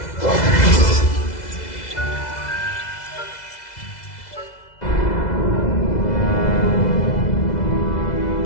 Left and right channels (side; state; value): right; late; 2.0 ms